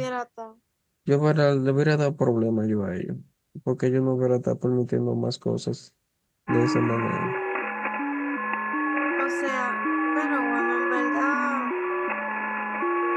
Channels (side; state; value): both; identical; correlation 1.00